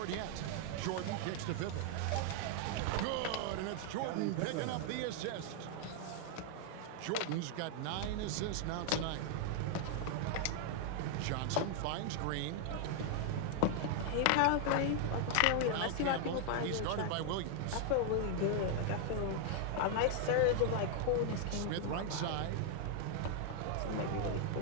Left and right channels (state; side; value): different; both; correlation 0.00